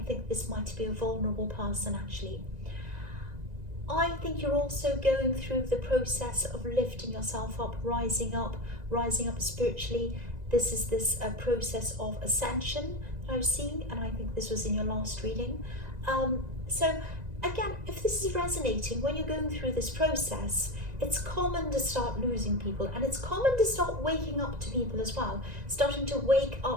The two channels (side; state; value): left; late; 1.9 ms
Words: think this might be a vulnerable person, actually. I think you're also going through the process of lifting yourself up, rising up spiritually. This is this process of ascension that I was seeing, and I think this was in your last reading. So again, if this is resonating, when you're going through this process, it's common to start losing people, and it's common to start waking up to people as well, starting to wake